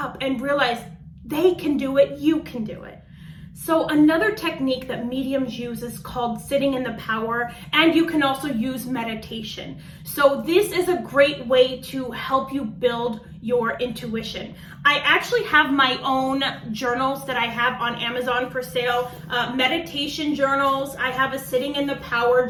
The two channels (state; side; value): identical; both; correlation 1.00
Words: and realize they can do it, you can do it. So another technique that mediums use is called sitting in the power, and you can also use meditation. So this is a great way to help you build your intuition. I actually have my own journals that I have on Amazon for sale, meditation journals. I have a sitting in the power